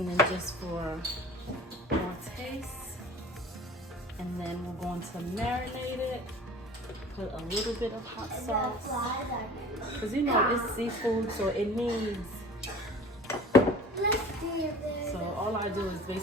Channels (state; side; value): normal; both; correlation 0.43